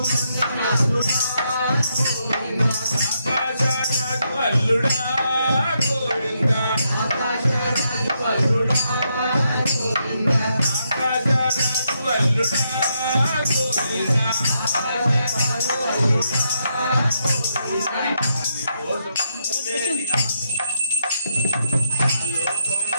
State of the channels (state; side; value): inverted; both; correlation -0.80